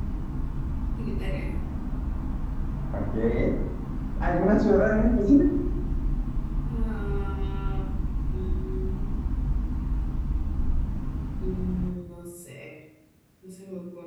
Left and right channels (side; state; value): both; identical; correlation 1.00